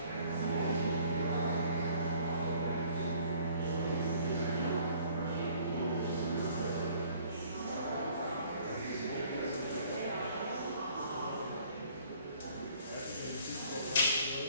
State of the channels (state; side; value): inverted; both; correlation -0.57